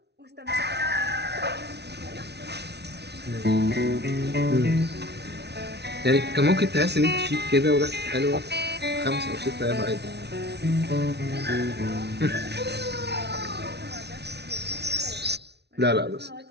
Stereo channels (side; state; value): left; late; 0.49 ms